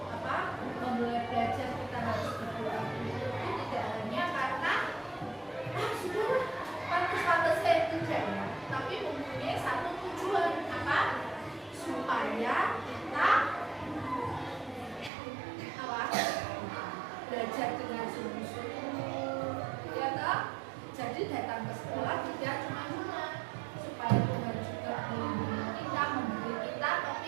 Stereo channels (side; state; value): left; drops out; at 15.1 s